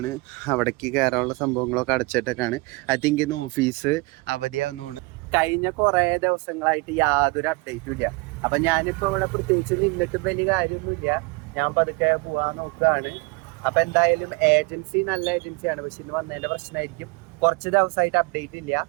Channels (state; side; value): quieter; left; 25.9 dB